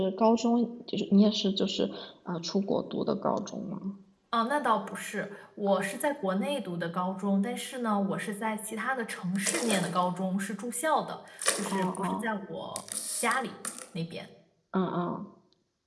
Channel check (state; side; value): identical; both; correlation 1.00